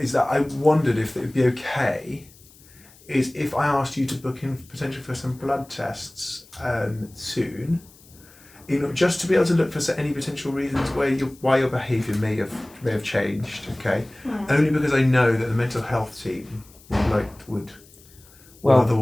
that I wondered if it would be okay is if I asked you to book in potentially for some blood tests soon, just to be able to look for any potential reasons why your behaviour may have changed. Okay, only because I know that the mental health team would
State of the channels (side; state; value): left; noise; hiss, 25 dB below the sound